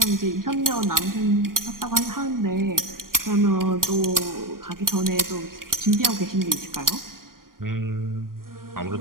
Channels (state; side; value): late; left; 0.91 ms